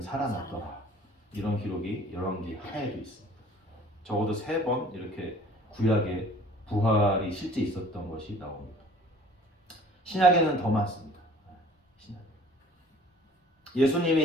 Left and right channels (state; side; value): normal; both; correlation 0.50